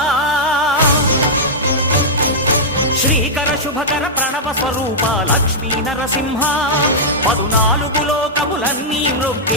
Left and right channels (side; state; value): both; normal; correlation -0.08